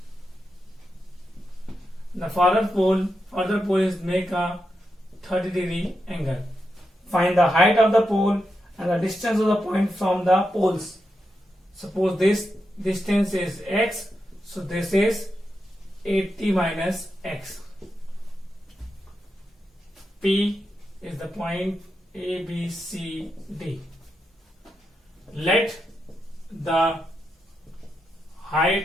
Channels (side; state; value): both; normal; correlation 0.86